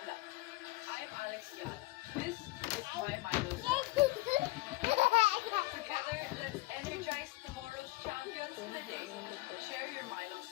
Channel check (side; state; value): right; quieter; 20.9 dB